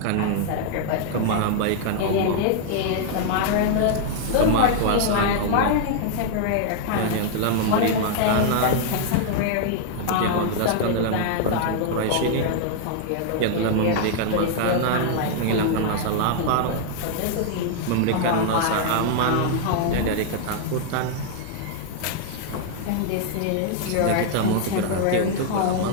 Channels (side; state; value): both; different; correlation -0.01